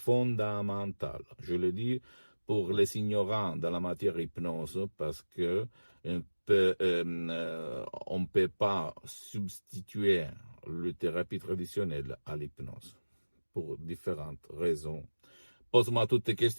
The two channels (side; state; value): both; inverted; correlation -1.00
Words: Je le dis pour les ignorants dans la matière hypnose parce que on ne peut pas substituer la thérapie traditionnelle à l'hypnose pour différentes raisons. Pose-moi toutes tes